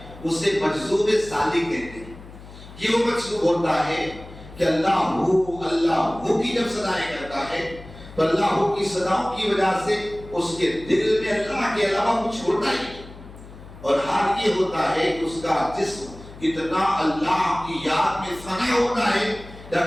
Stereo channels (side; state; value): left; noise; hum, 17 dB below the sound